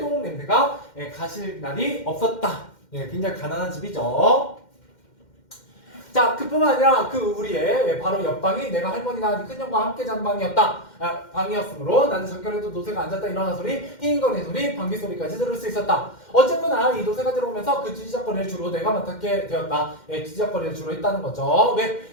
냄새가 가실 날이 없었다. 굉장히 가난한 집이죠. 자, 그뿐만 아니라 우리의 바로 옆방이 내가 할머니나 큰형과 함께 자는 방이었으므로 나는 잠결에도 노새가 앉았다 일어나 소리, 힝거리는 소리, 방귀 소리까지 들을 수 있었다. 어쨌거나 이 노새가 들어오면서 그 뒤지적거리를 주로 내가 맡게 되었다. 뒤지적거리를 주로 했다는 거죠. 왜?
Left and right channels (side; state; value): right; late; 2.1 ms